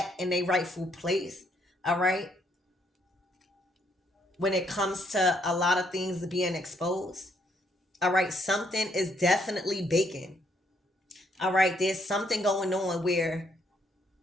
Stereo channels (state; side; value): normal; both; correlation 0.71